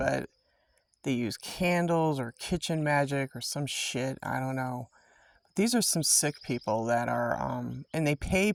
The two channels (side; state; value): both; identical; correlation 1.00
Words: they use candles or kitchen magic or some shit. I don't know. These are some sick people that are, and they pay